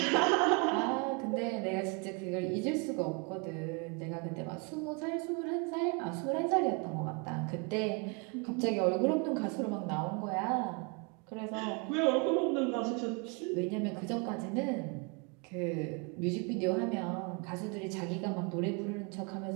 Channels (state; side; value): quieter; left; 31.7 dB